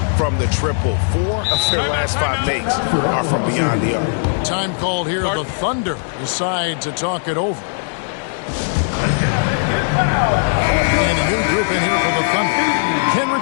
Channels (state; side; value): silent; right; digital silence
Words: from the triple. 4 of their last 5 makes are from beyond the arc. Time called here. The Thunder decide to talk it over. And a new group in here for the Thunder.